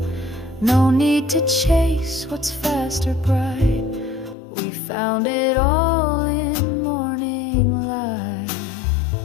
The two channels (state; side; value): drops out; right; at 4.4 s